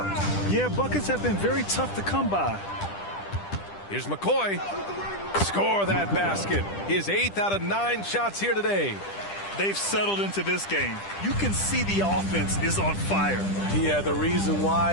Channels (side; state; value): right; late; 10 ms